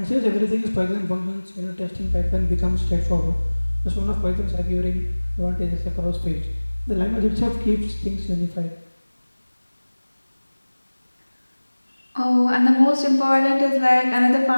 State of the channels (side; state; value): both; inverted; correlation -1.00